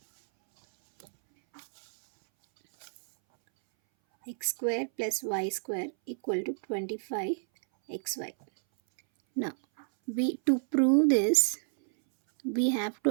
x square plus y square equal to 25xy. Now to prove this, we have to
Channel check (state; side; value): silent; left; 58 dB below the other